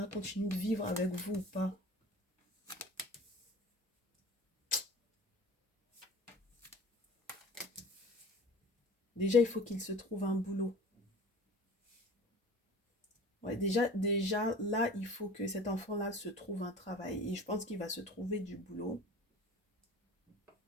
continue de vivre avec vous ou pas? Déjà, il faut qu'il se trouve un boulot. Ouais, déjà, là, il faut que cet enfant-là se trouve un travail. Et je pense qu'il va se trouver du boulot.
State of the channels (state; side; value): normal; both; correlation 0.42